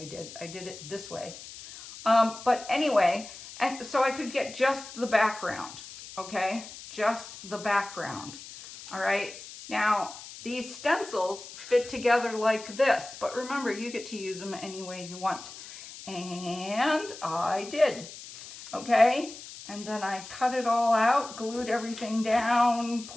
did. I did it this way. But anyway, and so I could get just the background, okay? Just the background, all right? Now, these stencils fit together like this, but remember, you get to use them any way you want. And I did, okay? And then I cut it all out, glued everything down,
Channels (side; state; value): left; noise; hiss, 14 dB below the sound